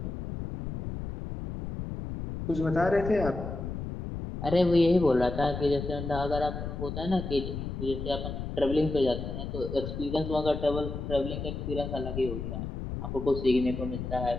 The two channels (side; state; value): left; noise; rumble, 6 dB below the sound